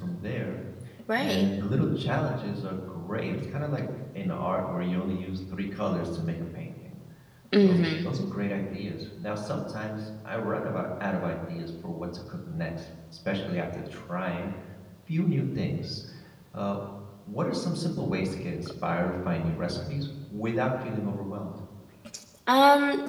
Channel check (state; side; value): identical; both; correlation 1.00